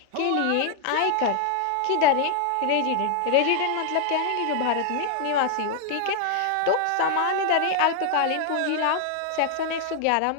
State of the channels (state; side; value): different; both; correlation 0.00